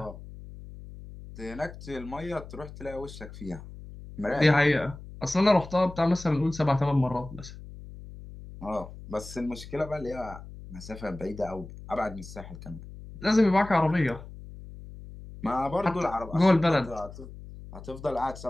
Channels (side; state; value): left; noise; hum, 15 dB below the sound